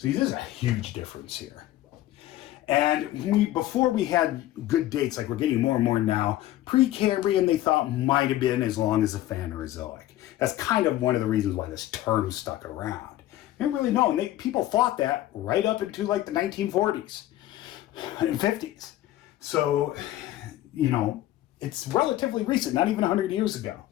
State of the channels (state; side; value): quieter; right; 14.4 dB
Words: there's a huge difference here. And before we had good dates, like we're getting more and more now, Precambrian they thought might have been as long as the Phanerozoic. That's kind of one of the reasons why this term stuck around. They didn't really know, and people thought that right up into like the 1940s and 50s. So, you know, it's relatively recent, not even 100 years ago.